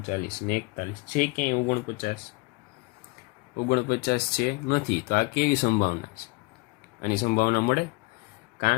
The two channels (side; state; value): right; quieter; 26.2 dB